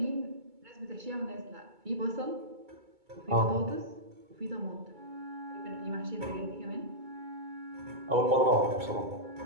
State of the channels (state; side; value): late; left; 2.2 ms